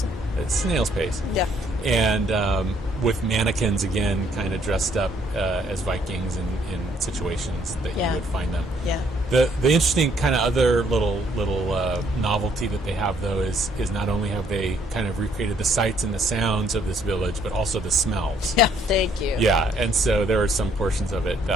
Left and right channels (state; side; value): normal; both; correlation 0.67